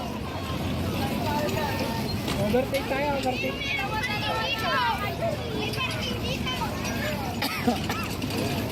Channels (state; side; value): identical; both; correlation 1.00